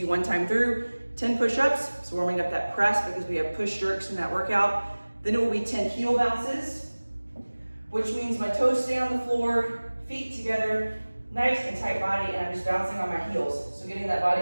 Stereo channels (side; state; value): both; inverted; correlation -1.00